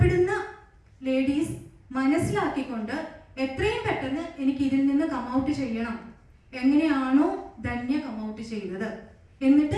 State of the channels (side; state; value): both; identical; correlation 1.00